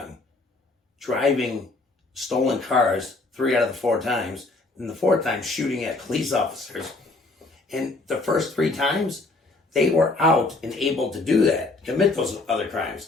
driving stolen cars 3 out of the 4 times, and the 4th time shooting at police officers. And the first 3 times, they were out and able to do that, commit those other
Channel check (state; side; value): quieter; right; 3.2 dB